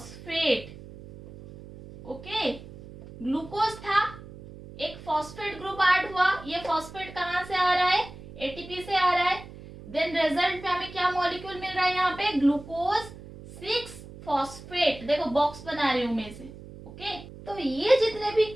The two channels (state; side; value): noise; right; hum, 16 dB below the sound